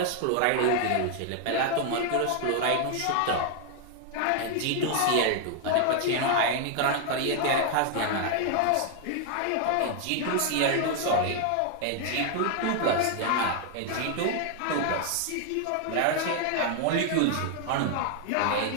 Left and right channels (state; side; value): different; both; correlation 0.00